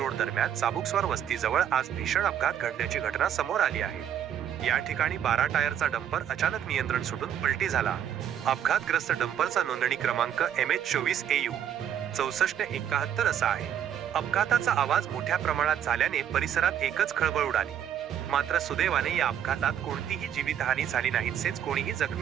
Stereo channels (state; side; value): quieter; left; 9.7 dB